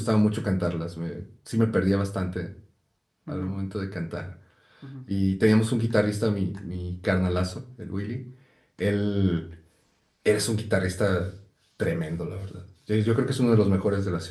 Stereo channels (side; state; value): both; identical; correlation 1.00